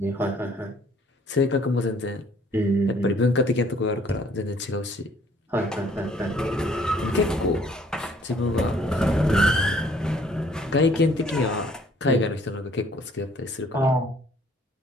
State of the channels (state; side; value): normal; both; correlation 0.60